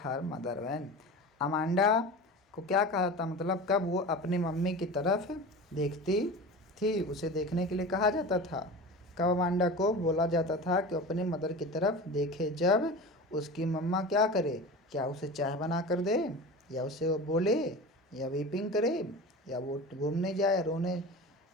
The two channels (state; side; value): normal; both; correlation 0.32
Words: her mother when. अमांडा को क्या कहा था, मतलब कब वो अपनी मम्मी की तरफ देखती थी, उसे देखने के लिए कहा जाता था। कब अमांडा को बोला जाता था कि अपने मदर की तरफ देखे, जब उसकी मम्मा क्या करे, क्या उसे चाय बना कर दे, या उसे वो बोले, या वीपिंग करे, या वो घूमने जाए रोने,